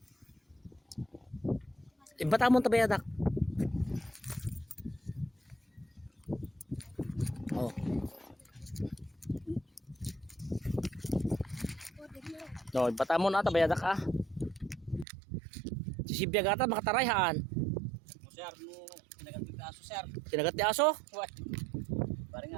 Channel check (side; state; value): left; drops out; at 15.1 s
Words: Batamon tabayad ak. Oh. No, batamon ata bayadak ah. Sisibiyag ata makatarayhan. Sir, no, kinagat ti aso, sir. Kinagat ti aso? What? Parang